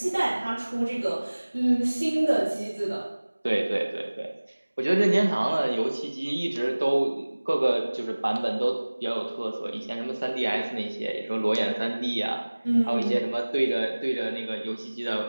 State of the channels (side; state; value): both; inverted; correlation -1.00